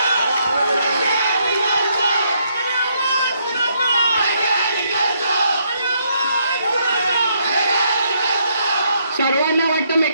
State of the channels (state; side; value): inverted; both; correlation -0.73